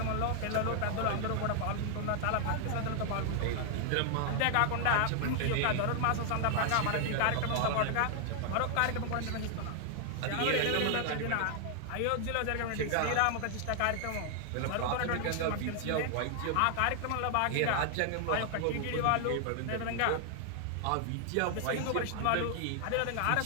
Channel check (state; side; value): different; both; correlation 0.00